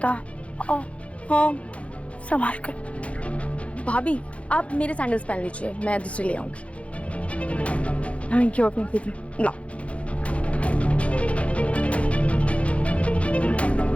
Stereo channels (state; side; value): late; right; 0.063 ms